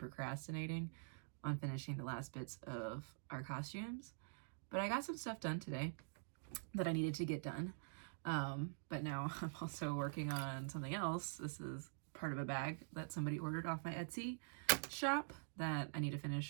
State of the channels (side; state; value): left; silent; digital silence